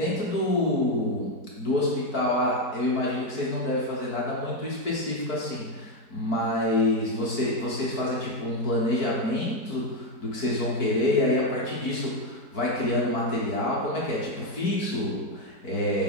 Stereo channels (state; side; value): late; right; 4.5 ms